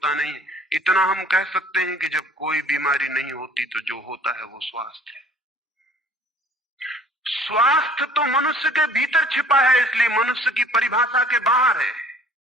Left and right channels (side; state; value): both; normal; correlation 0.53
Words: नहीं है। इतना हम कह सकते हैं कि जब कोई बीमारी नहीं होती तो जो होता है वो स्वास्थ्य है। स्वास्थ्य तो मनुष्य के भीतर छिपा है, इसलिए मनुष्य की परिभाषा के बाहर है।